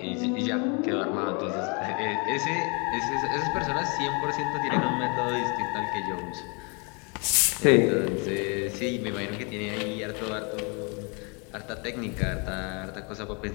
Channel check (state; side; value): quieter; right; 33.3 dB